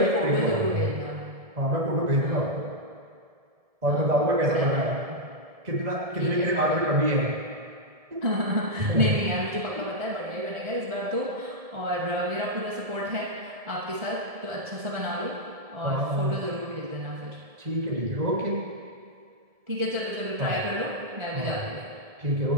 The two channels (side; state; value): left; late; 1.7 ms